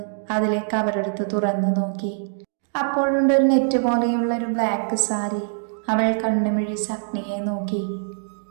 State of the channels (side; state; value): left; silent; digital silence